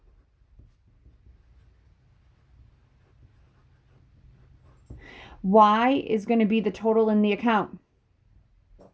Y is going to be the total in the account.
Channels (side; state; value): both; identical; correlation 1.00